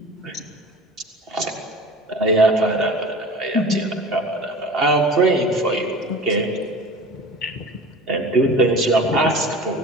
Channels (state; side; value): normal; both; correlation 0.38